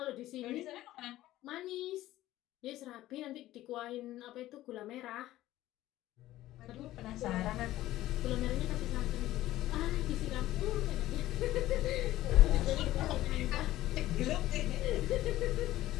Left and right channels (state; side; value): quieter; right; 15.2 dB